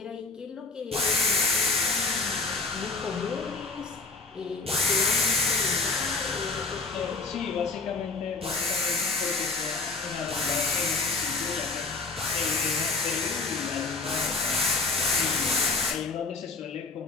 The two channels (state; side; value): quieter; right; 3.9 dB